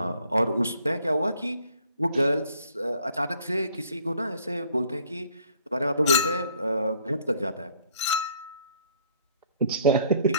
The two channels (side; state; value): both; inverted; correlation -0.60